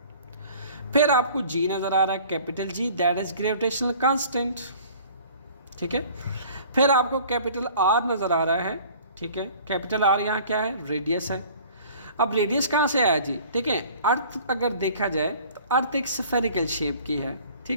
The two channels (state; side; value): inverted; both; correlation -0.49